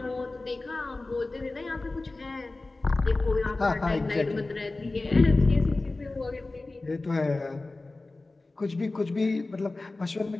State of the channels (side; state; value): right; quieter; 3.2 dB